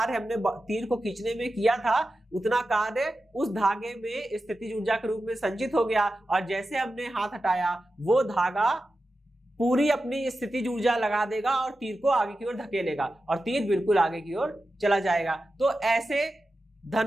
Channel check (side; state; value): both; normal; correlation 0.92